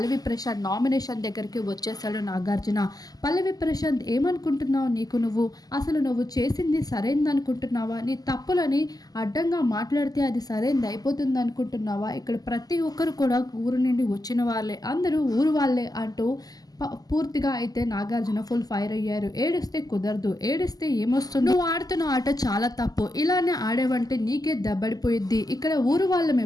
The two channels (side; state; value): right; late; 0.18 ms